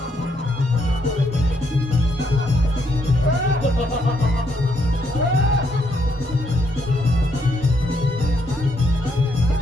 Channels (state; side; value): normal; both; correlation 0.74